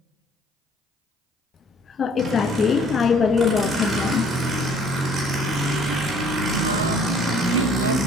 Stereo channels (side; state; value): both; normal; correlation 0.57